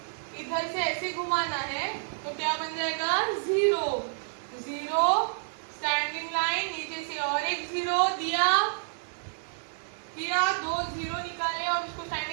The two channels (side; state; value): left; silent; digital silence